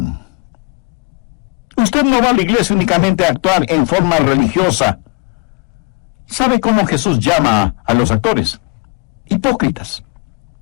Usted no va a la iglesia únicamente a actuar en forma religiosa. ¿Sabe cómo Jesús llama a los actores? Hipócritas.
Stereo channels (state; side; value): quieter; right; 29.6 dB